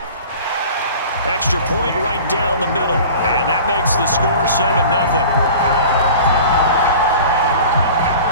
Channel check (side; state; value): both; inverted; correlation -0.41